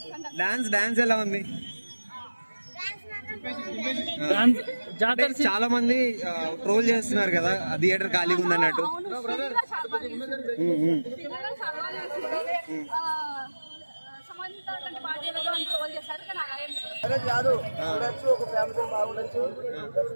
డాన్స్ ఎలా ఉంది? అంటే చాలా మంది ట్రోల్ చేస్తున్నారు కదా, థియేటర్ ఖాళీగా ఉంది అన్నట్టు. కాదు చూడొచ్చు, ఒక ఫ్యామిలీ బాగుండొచ్చు.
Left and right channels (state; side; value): inverted; both; correlation -1.00